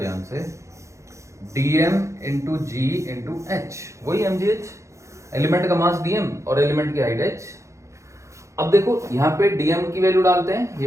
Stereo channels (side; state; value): left; late; 0.14 ms